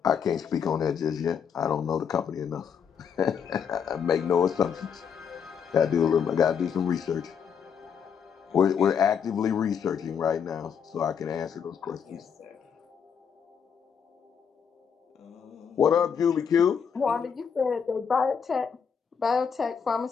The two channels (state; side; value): quieter; right; 7.1 dB